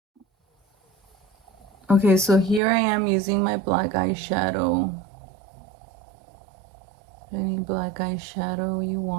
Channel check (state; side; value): drops out; left; at 2.6 s